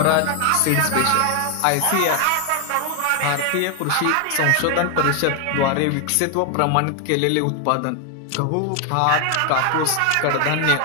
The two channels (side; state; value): both; different; correlation 0.00